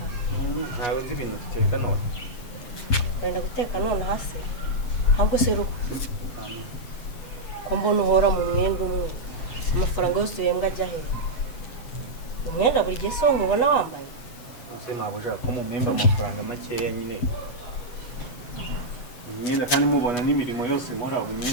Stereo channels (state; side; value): late; right; 8.2 ms